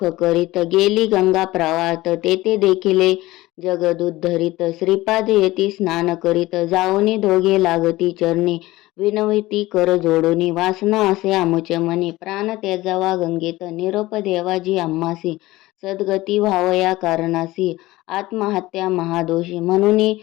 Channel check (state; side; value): quieter; right; 18.4 dB